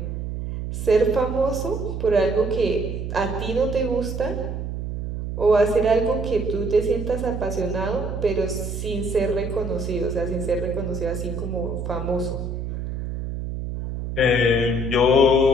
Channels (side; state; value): right; noise; hum, 5 dB below the sound